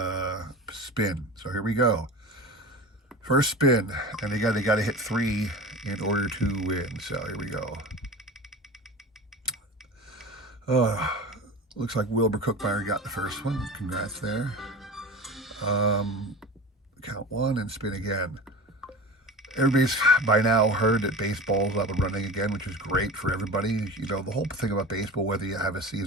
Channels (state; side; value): normal; both; correlation 0.32